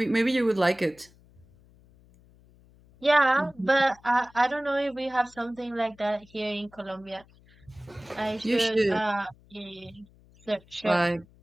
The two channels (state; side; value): noise; left; hum, 28 dB below the sound